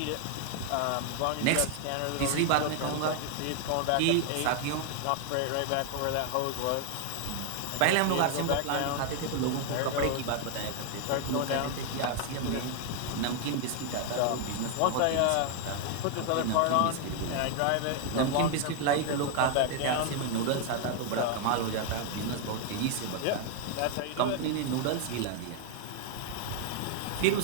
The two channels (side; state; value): both; different; correlation 0.00